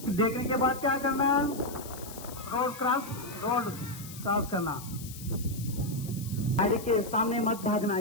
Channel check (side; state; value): left; noise; hiss, 14 dB below the sound